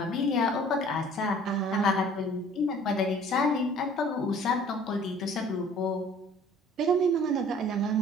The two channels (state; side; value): normal; both; correlation 0.51